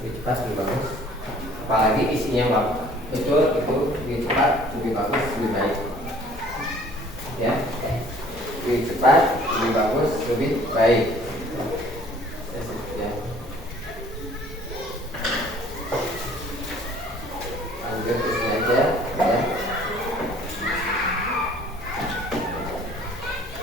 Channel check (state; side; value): normal; both; correlation 0.54